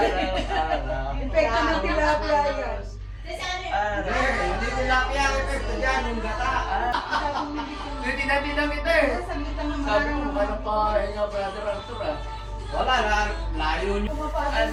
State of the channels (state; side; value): identical; both; correlation 1.00